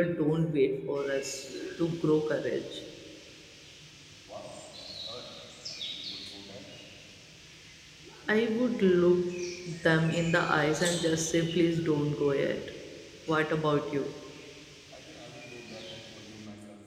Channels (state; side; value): identical; both; correlation 1.00